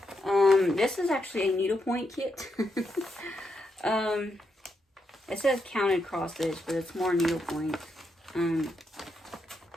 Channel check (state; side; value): normal; both; correlation 0.82